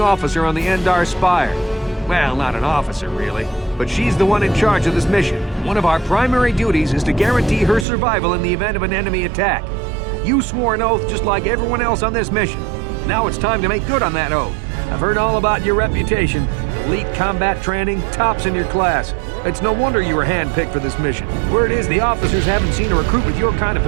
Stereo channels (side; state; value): left; drops out; at 7.9 s